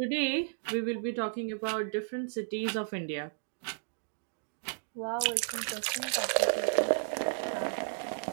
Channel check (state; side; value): silent; left; digital silence